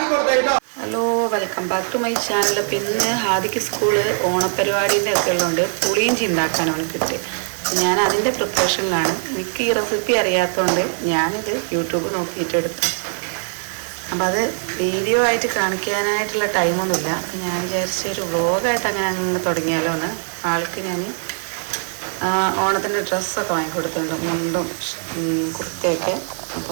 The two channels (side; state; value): left; silent; digital silence